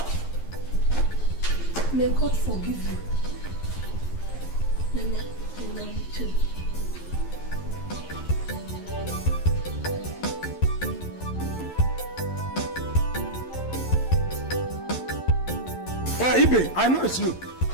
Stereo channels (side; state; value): right; late; 11 ms